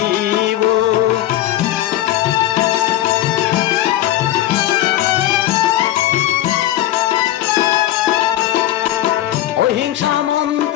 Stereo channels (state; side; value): quieter; right; 13.9 dB